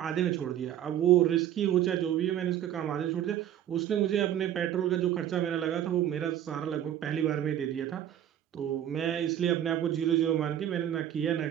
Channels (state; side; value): quieter; left; 11.1 dB